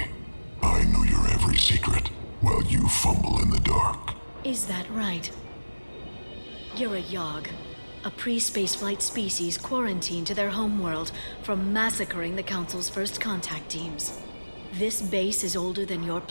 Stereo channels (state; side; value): inverted; both; correlation -1.00